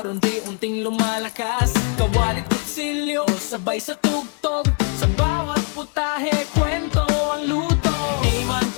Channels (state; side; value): quieter; right; 37.8 dB